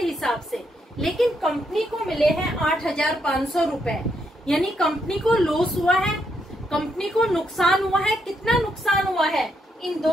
से, लेकिन कंपनी को मिले हैं 8,500 रुपए, यानी कंपनी को लॉस हुआ है, कंपनी को नुकसान हुआ है। कितना नुकसान हुआ है? इन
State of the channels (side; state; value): both; normal; correlation 0.78